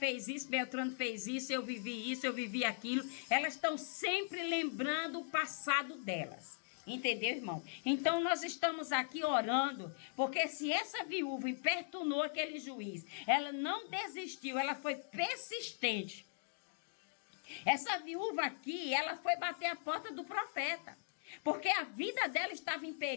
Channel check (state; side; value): silent; right; digital silence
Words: isso, Beltrano fez isso, eu vivi aquilo. Elas estão sempre lembrando o passado delas. Entendeu, irmão? Então, nós estamos aqui orando, porque se essa viúva importunou aquele juiz, ela não desistiu, ela foi persistente. Essa viúva aqui, ela foi bater a porta do profeta, porque a vida dela estava em